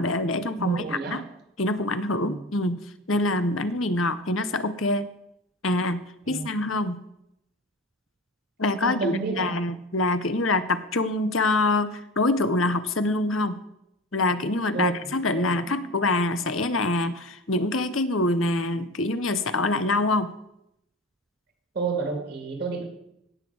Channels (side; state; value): both; normal; correlation 0.31